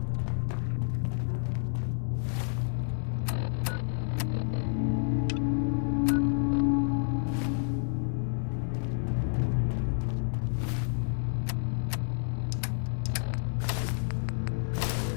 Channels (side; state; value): right; silent; 58 dB below the other